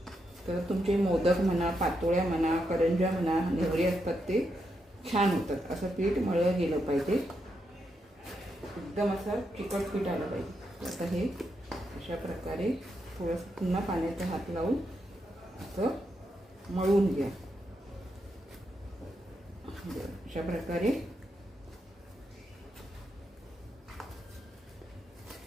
तर तुमचे मोदक म्हणा, पातोळ्या म्हणा, करंज्या म्हणा, नेवरे असतात ते छान होतात. असं पीठ मळलं गेलं पाहिजे, एकदम असं चिकट पीठ आलं पाहिजे. आता हे अशा प्रकारे थोडंसं पुन्हा पाण्याचा हात लावून असं मळून घ्या. अशा प्रकारे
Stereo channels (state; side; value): normal; both; correlation 0.83